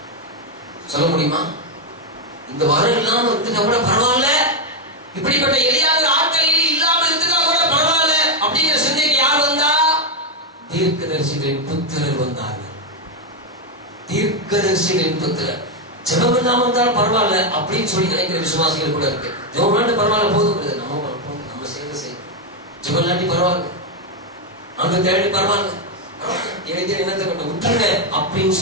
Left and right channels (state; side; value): normal; both; correlation 0.04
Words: சொல்ல முடியுமா? இந்த வரம் இல்லாம இருக்குதா கூட பரவாயில்ல, இப்படிப்பட்ட எளியாத ஆட்கள் இல்லாம இருக்குதா கூட பரவாயில்ல அப்படிங்கிற சிந்தைக்கு யார் வந்தா? தீர்க்கதரிசிகளின் புத்திரர் வந்தார்கள். தீர்க்கதரிசிகளின் புத்திரர். ஜெபம் இல்லாம இருந்தாலும் பரவாயில்ல அப்படின்னு சொல்லி நினைக்கிற விசுவாசிகள் கூட இருக்கு. ஜெபம் இல்லாட்டி பரவாயில்ல, போதும் நம்ம செய்ய ஜெபம் இல்லாட்டி பரவாயில்ல, அங்க தேடி பரவாயில்ல, என்னத்தை கொண்டு விட்டுருங்க அப்படின்னு